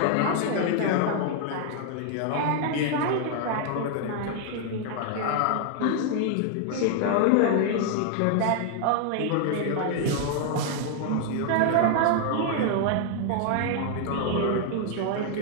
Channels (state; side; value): different; both; correlation 0.00